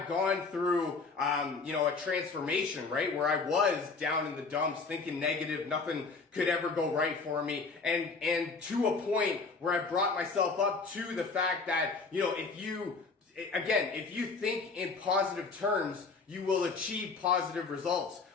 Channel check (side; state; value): right; quieter; 4.3 dB